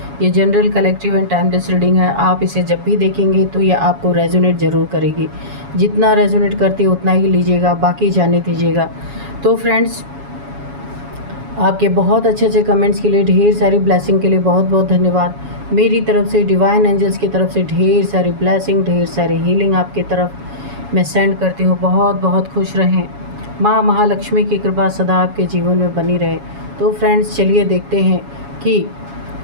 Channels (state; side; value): late; left; 7.2 ms